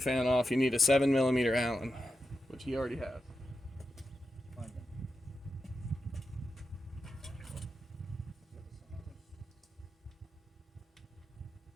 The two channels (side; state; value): both; normal; correlation 0.89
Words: off, you need a 7mm Allen, which he already has. Find them.